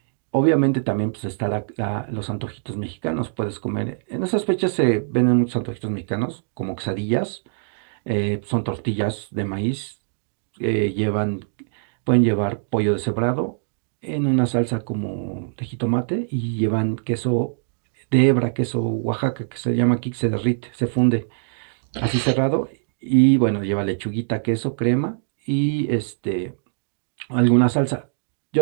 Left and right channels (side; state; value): left; silent; digital silence